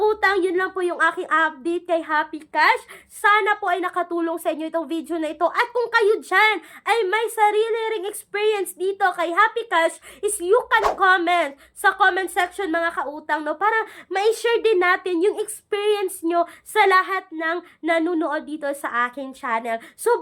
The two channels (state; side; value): identical; both; correlation 1.00